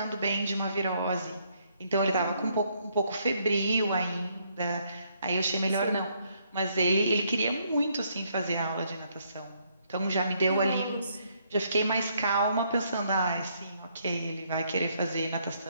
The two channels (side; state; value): both; inverted; correlation -0.71